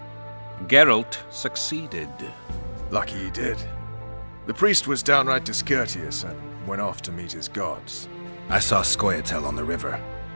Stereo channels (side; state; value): both; inverted; correlation -1.00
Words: Geralt succeeded. Lucky he did. The priest was downright discourteous and went off to meet his gods. I saw Scoia'tael on the river.